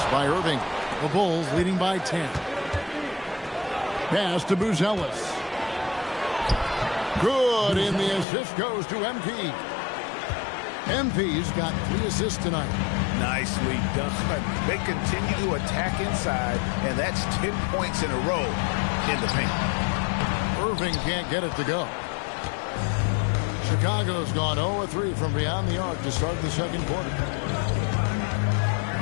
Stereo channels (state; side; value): drops out; right; at 8.2 s